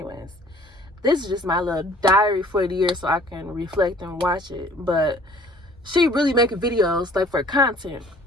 This is just my little diary for the year so I can reflect and watch it. But she really making videos like for content.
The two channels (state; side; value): normal; both; correlation 0.54